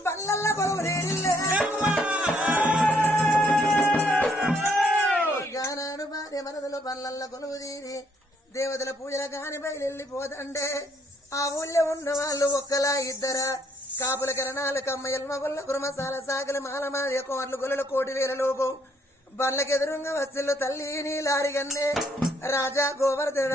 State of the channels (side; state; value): both; normal; correlation 0.69